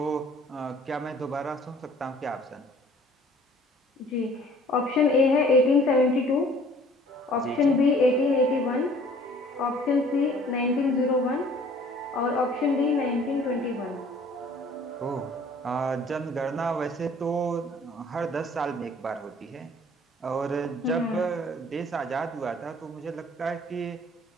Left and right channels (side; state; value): both; normal; correlation 0.54